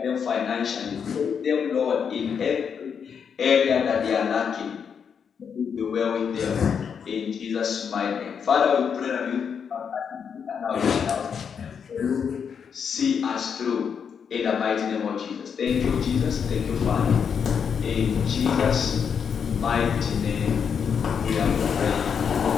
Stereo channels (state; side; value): quieter; right; 7.0 dB